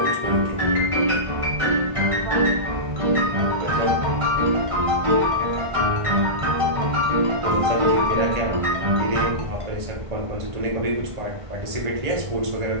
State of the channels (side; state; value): left; late; 1.5 ms